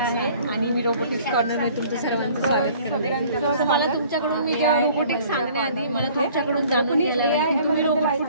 आहे आणि मी रोबोटिक्स कॉर्नरमध्ये तुमचं सर्वांचं स्वागत करते। मला तुमच्याकडून मी जेव्हा रोबोटिक्स सांगण्याआधी मला तुमच्याकडून जाणून घ्यायला आहे तुम्ही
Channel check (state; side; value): inverted; both; correlation -0.53